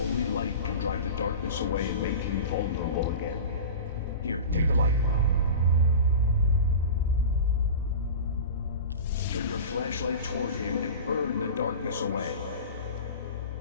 light can drive the darkness away and make him vulnerable again. Here, take the light. Turn your flashlight toward him and burn the darkness away.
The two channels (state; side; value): inverted; both; correlation -0.31